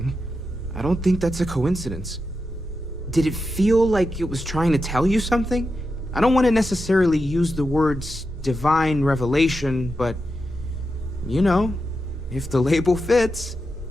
I don't think that's a coincidence. Did it feel like it was trying to tell you something? I don't want to necessarily use the words divine revelation, but, you know, if the label fits.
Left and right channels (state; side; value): normal; both; correlation 0.88